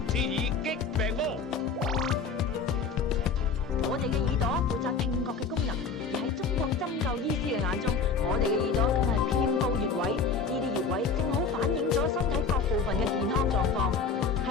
治耳擊病魔。我哋嘅耳朵負責聽覺嘅功能，而喺中國針灸醫師嘅眼中，我哋嘅耳朵更係遍佈穴位，呢啲穴位正好反映咗身體各部分嘅健康狀況。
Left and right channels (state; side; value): quieter; right; 4.9 dB